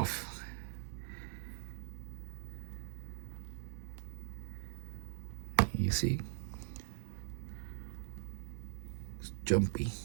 You see? It's jumpy.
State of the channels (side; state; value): left; silent; digital silence